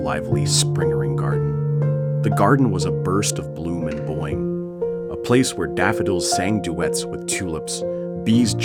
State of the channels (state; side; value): identical; both; correlation 1.00